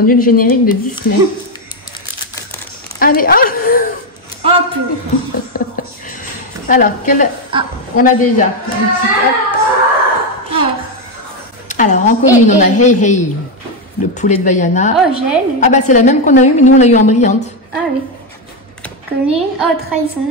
le générique de Disney. Allez, alors, on a déjà. Alors, en commune, on a Hey Hey, le poulet de Vaiana. Oh, gel. Ah bah c'est la même qu'on a eu, mais nous on l'a eu en brillante. Ah oui. Commune. Oh,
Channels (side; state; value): both; normal; correlation 0.05